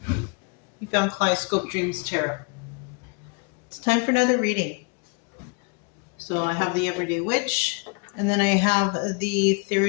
you found Kaleidoscope Dreams Tarot. It's time for another reading. So I have the Everyday Witch, and then I have the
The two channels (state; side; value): quieter; right; 32.8 dB